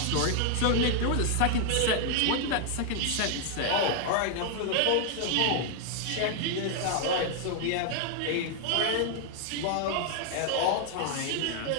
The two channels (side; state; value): both; different; correlation 0.00